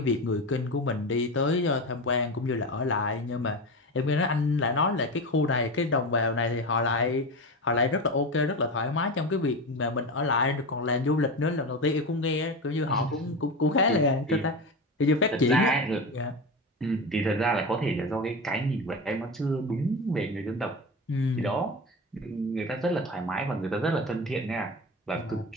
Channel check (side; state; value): both; normal; correlation 0.23